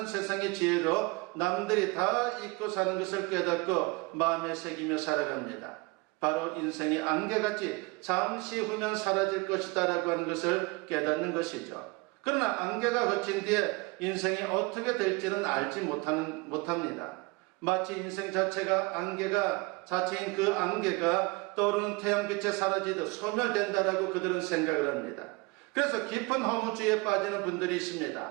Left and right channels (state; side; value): quieter; left; 25.6 dB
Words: 세상의 지혜로 남들이 다 잊고 사는 것을 깨닫고 마음에 새기며 살아갑니다. 바로 인생의 안개같이 잠시 후면 사라질 것이다 라고 하는 것을 깨닫는 것이죠. 그러나 안개가 거친 뒤에 인생이 어떻게 될지는 알지 못합니다. 마치 인생 자체가 자체인 그 안개가 떠오르는 태양빛에 사라지듯 소멸된다라고 그들은 생각을 합니다. 그래서 깊은 허무주의에 빠지는 분들이